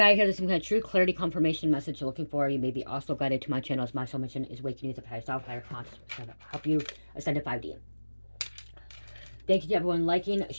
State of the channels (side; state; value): both; inverted; correlation -1.00